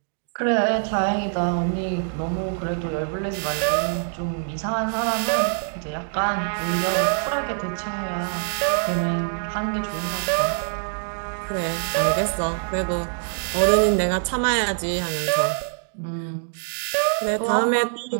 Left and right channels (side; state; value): left; silent; 62 dB below the other